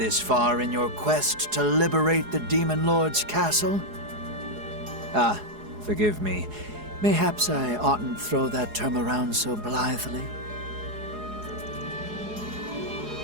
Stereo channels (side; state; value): left; late; 4.8 ms